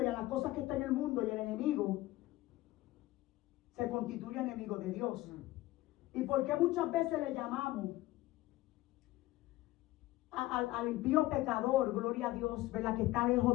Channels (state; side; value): quieter; right; 17.5 dB